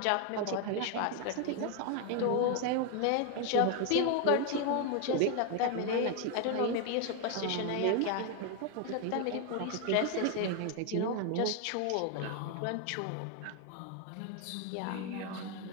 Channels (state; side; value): different; both; correlation 0.01